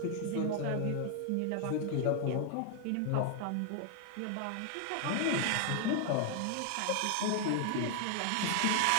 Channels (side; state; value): both; different; correlation 0.00